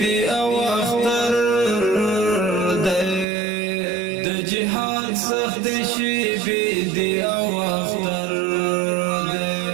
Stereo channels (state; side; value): drops out; left; at 3.2 s